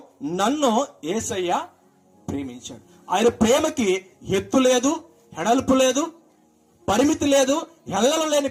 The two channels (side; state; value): both; identical; correlation 1.00